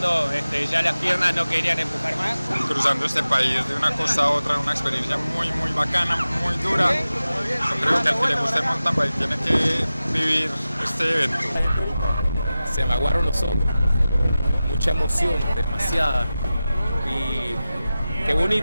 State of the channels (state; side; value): inverted; both; correlation -0.95